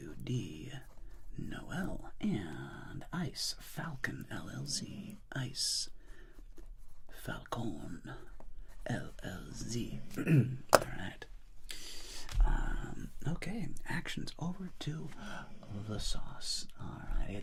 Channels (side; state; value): both; identical; correlation 1.00